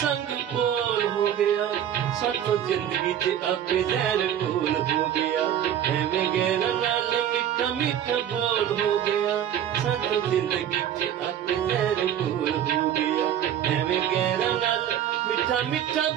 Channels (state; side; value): quieter; left; 10.2 dB